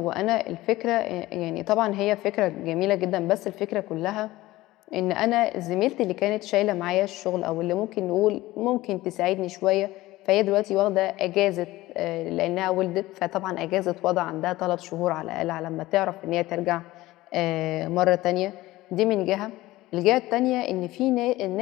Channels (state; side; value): quieter; right; 17.8 dB